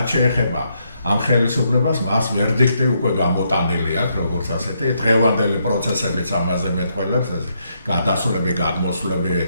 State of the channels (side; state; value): both; inverted; correlation -0.77